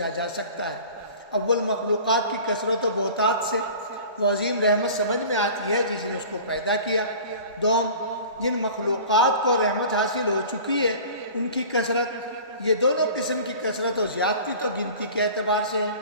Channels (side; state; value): both; inverted; correlation -0.41